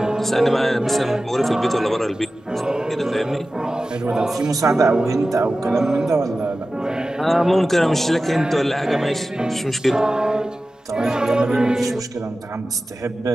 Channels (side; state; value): both; normal; correlation 0.95